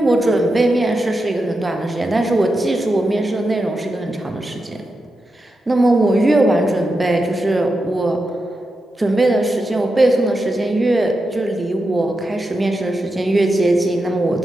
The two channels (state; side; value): normal; both; correlation 0.88